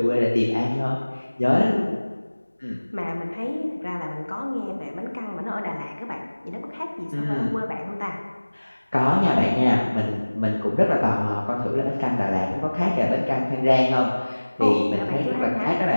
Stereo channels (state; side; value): inverted; both; correlation -1.00